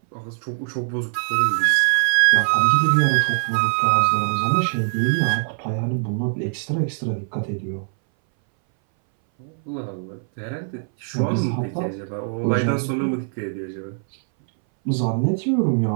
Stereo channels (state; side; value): silent; left; 61 dB below the other